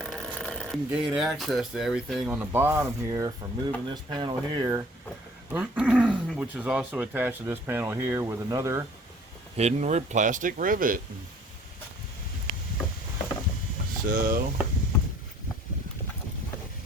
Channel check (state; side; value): normal; both; correlation 0.53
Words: You can gain access to everything on the bottom here from moving this panel here, which is also attached to this panel here with another hidden plastic rivet. So